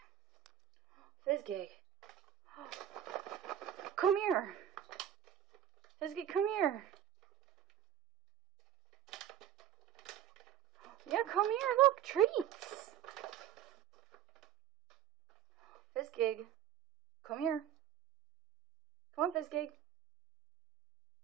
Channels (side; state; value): left; quieter; 10.7 dB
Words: Fizzy. Come here. Fizzy, come here. Yeah, come here. Look, treats. Fizzy, come here. Come on, Fizzy.